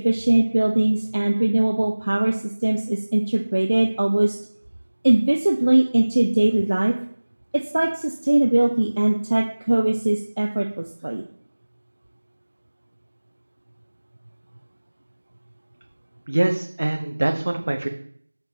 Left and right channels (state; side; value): inverted; both; correlation -1.00